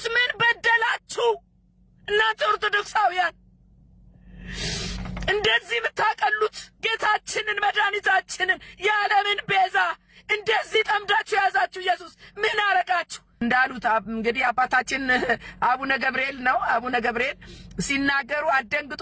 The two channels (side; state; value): both; identical; correlation 1.00